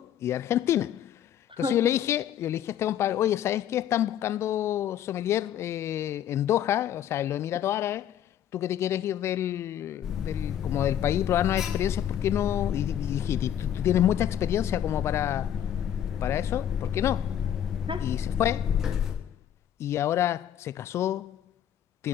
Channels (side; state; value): right; quieter; 10.3 dB